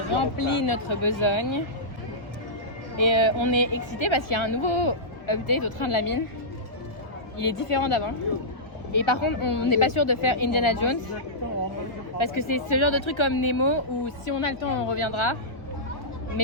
rempli notre besogne. Et on est excités parce qu'il y a un nouveau update au train de la mine. Il est différent d'avant. Et par contre, on n'est pas sûr de faire Indiana Jones. Parce que c'est ce genre de truc comme Nemo où si on a le temps, on reviendra.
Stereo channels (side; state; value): right; late; 1.2 ms